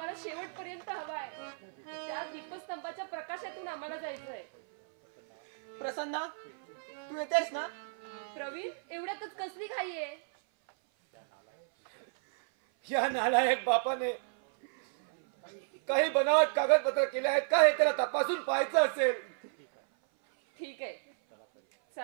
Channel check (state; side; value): silent; left; 56 dB below the other